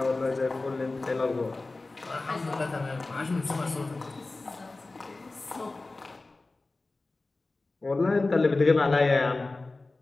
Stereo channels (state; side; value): quieter; right; 3.3 dB